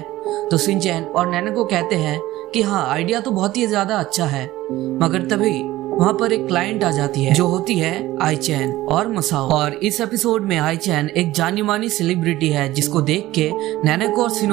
तो शिनचैन और नैनेको कहते हैं कि हाँ, आइडिया तो बहुत ही ज्यादा अच्छा है। मगर तभी वहाँ पर एक क्लाइंट आ जाती है जो होती है आईचैन और मसाओ। और इस एपिसोड में आईचैन एक जानी मानी सेलिब्रिटी है जिसको देख के नैनेको और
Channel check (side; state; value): left; quieter; 16.5 dB